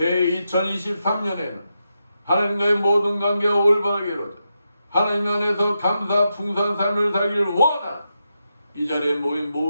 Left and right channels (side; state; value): both; inverted; correlation -0.86